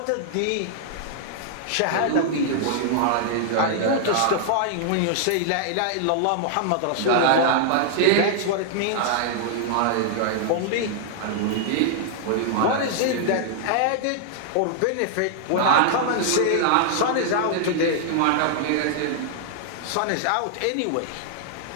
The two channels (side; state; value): both; different; correlation -0.01